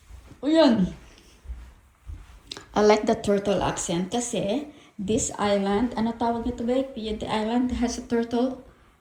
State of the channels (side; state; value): both; identical; correlation 1.00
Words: O yan. I like the turtle accent kasi this island, ano tawag nito ba? The island has a turtle.